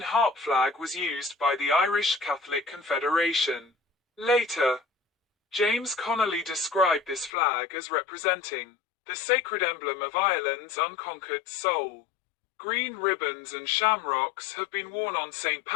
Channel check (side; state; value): right; drops out; at 7.3 s